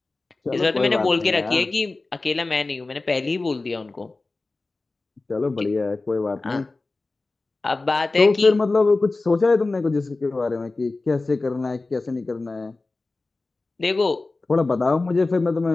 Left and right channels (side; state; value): right; quieter; 3.4 dB